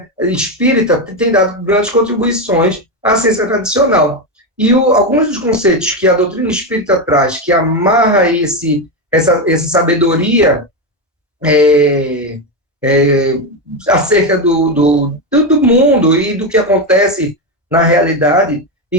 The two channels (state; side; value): normal; both; correlation 0.11